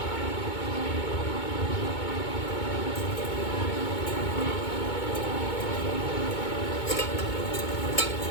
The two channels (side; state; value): right; late; 2.2 ms